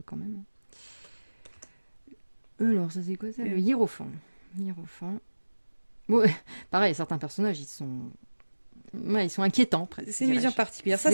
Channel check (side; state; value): both; inverted; correlation -1.00